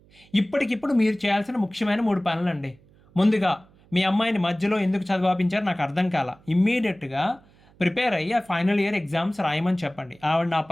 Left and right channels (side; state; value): right; noise; hum, 29 dB below the sound